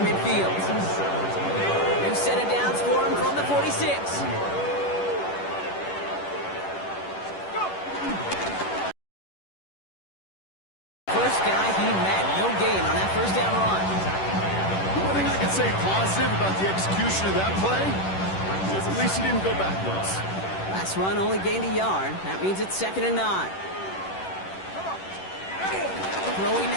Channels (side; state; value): right; late; 10 ms